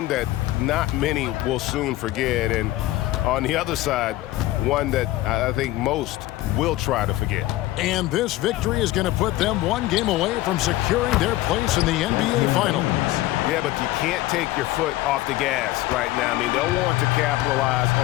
that not many will soon forget. And on the other side, one that I think most will try to forget. And this victory is going to put them 1 game away from securing their place in the NBA Finals. Yeah, but you can't take your foot off the gas right now. I mean, they'll want to capitalize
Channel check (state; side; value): quieter; right; 16.7 dB